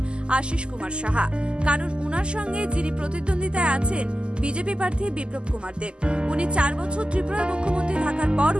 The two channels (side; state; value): left; late; 0.049 ms